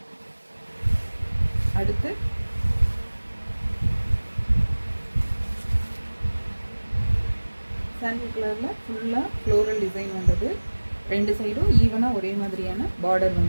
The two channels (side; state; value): both; inverted; correlation -1.00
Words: அடுத்து சாண்டில் கலரில் ஃபுல்லாக ஃப்ளோரல் டிசைன் வந்தது. ரெண்டு சைடும் ஈவனாக ஒரே மாதிரியான பார்டர்